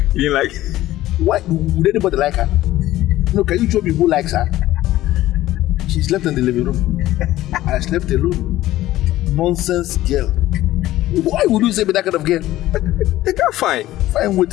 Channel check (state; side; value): quieter; right; 15.2 dB